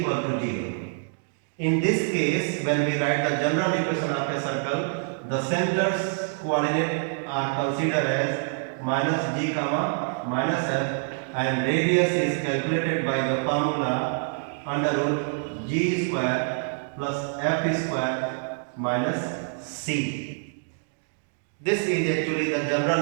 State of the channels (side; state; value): left; silent; 61 dB below the other